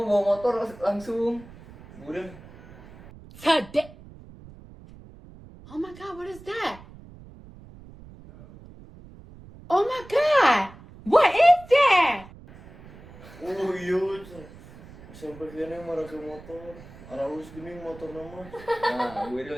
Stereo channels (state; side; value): noise; right; rumble, 19 dB below the sound